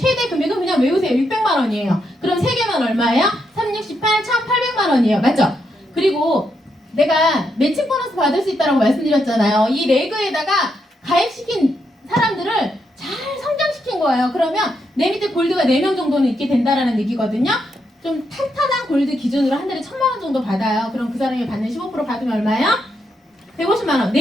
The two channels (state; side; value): normal; both; correlation 0.80